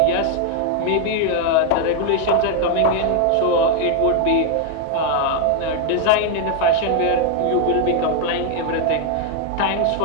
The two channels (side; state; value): both; different; correlation 0.00